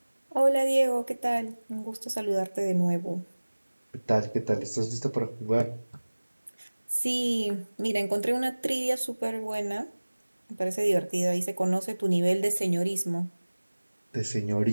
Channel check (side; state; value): both; inverted; correlation -1.00